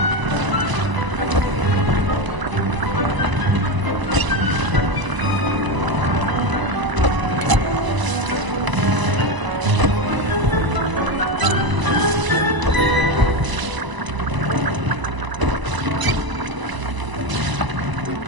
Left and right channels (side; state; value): left; late; 1.0 ms